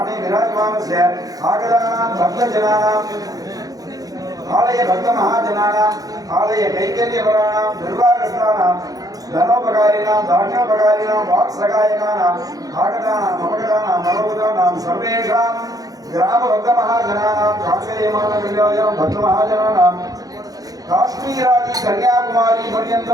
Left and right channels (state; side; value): late; left; 0.18 ms